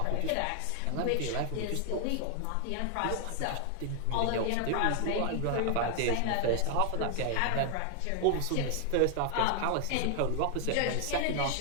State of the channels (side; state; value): both; different; correlation 0.00